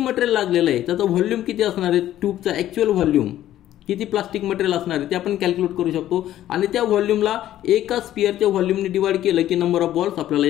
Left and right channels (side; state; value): right; quieter; 12.8 dB